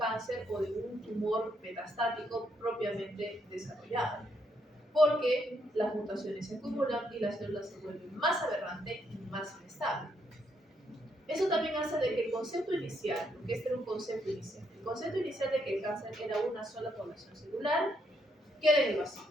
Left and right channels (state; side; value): normal; both; correlation 0.75